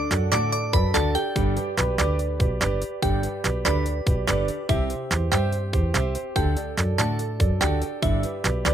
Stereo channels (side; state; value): both; normal; correlation 0.80